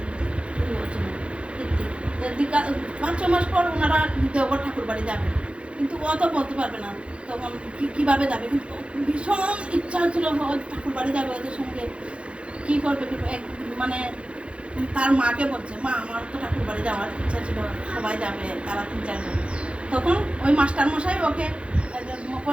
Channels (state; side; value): late; left; 0.059 ms